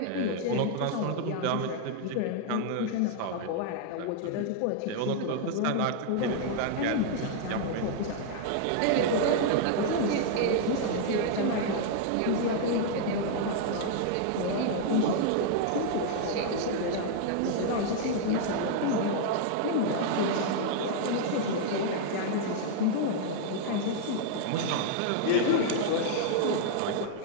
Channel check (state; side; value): different; both; correlation -0.01